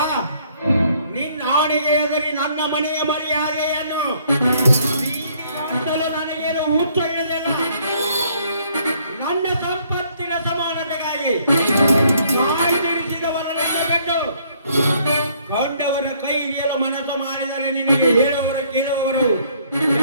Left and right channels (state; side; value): inverted; both; correlation -0.64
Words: ನಿನ್ನ ಆಣೆಗೆ ಎದುರಿ ನನ್ನ ಮನೆಯ ಮರ್ಯಾದೆಯನ್ನು ಅಂತಲೂ ನನಗೇನು ಹುಚ್ಚು ಹಿಡಿದಿಲ್ಲ. ನನ್ನ ಸಂಪತ್ತಿನ ಸಮಾನತೆಗಾಗಿ ತಾಯಿ ತಿಳಿಸಿದವರನ್ನು ಬಿಟ್ಟು ಕಂಡವರ ಕೈ ಹಿಡಿಯಲು ಮನಸ್ಸು ಮಾಡಿದರೆ ನಿನಗೆ ಹೇಳುವವರು ಕೇಳುವವರು